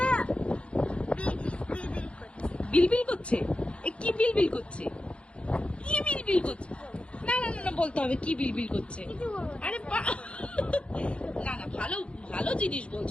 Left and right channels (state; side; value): late; right; 0.059 ms